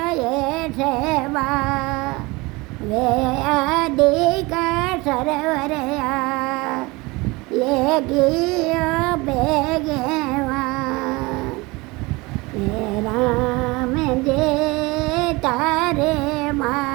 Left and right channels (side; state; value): left; quieter; 23.8 dB